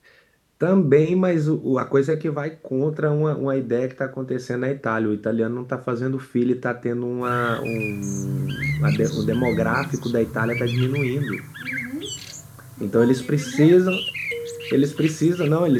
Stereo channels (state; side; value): identical; both; correlation 1.00